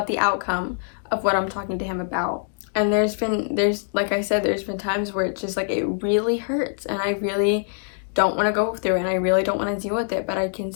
the outcome of what I'm talking to him about. And like I said, there's been times where it's just like, it really hurts, and I really don't want to go through it, and I really don't want to deal with it, but I can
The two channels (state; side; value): silent; right; digital silence